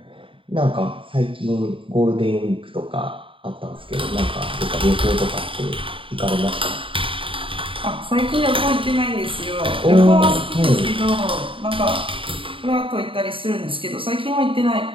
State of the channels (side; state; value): left; late; 0.25 ms